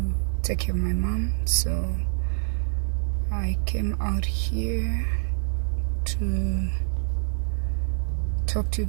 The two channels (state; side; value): silent; left; 61 dB below the other